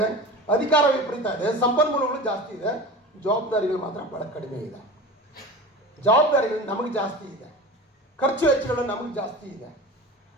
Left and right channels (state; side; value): normal; both; correlation 0.33